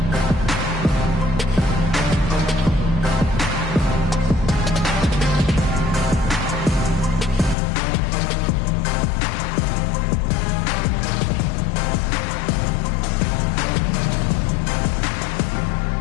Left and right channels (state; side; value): drops out; right; at 7.6 s